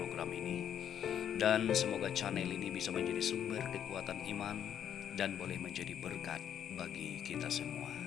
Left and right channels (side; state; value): right; quieter; 9.4 dB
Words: ini. Dan semoga channel ini bisa menjadi sumber kekuatan iman dan boleh menjadi berkat bagi kita semua.